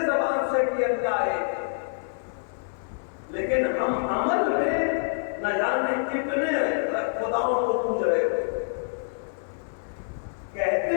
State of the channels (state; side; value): silent; right; 60 dB below the other